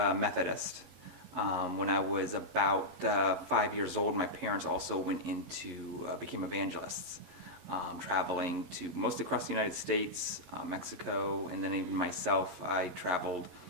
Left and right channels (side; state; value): left; late; 15 ms